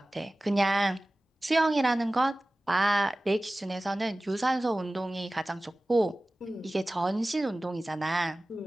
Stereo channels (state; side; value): normal; both; correlation 0.97